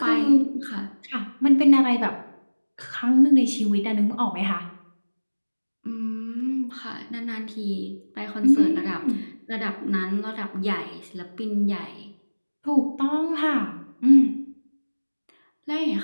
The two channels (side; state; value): both; inverted; correlation -1.00